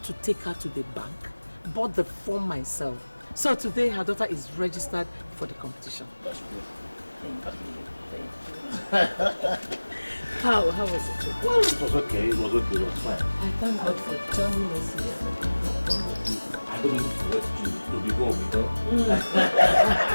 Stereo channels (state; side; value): inverted; both; correlation -1.00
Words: to take her to the bank, bought the form myself. So today her daughter is registered for the competition. That's good. Thank you. How was it? Well, it was okay. It was fine. I thank God for joining us here. I I don't want to be home, you know.